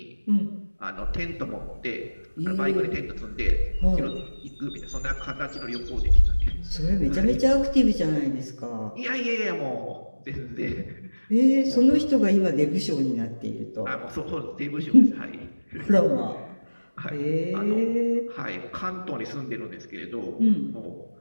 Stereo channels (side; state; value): both; inverted; correlation -1.00